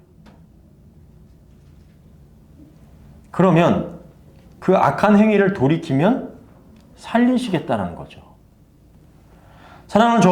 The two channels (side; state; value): both; identical; correlation 1.00